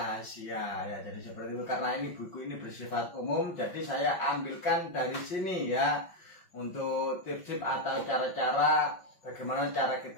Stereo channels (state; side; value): late; right; 5.5 ms